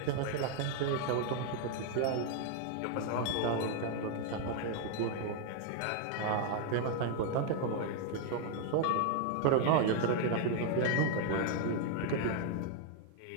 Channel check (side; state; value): both; different; correlation 0.00